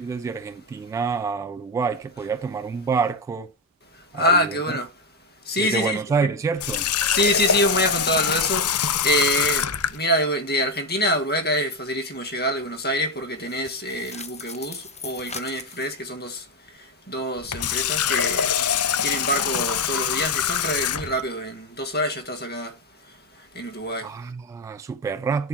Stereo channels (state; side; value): normal; both; correlation 0.10